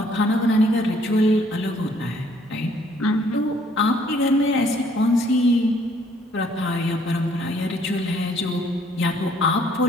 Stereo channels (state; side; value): normal; both; correlation 0.63